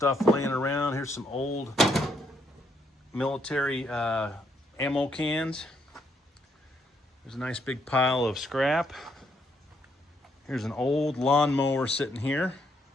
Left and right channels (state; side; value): normal; both; correlation 0.74